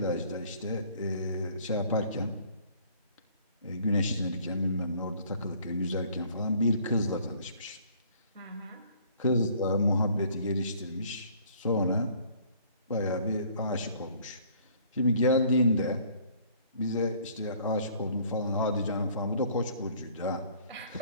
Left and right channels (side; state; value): both; inverted; correlation -0.57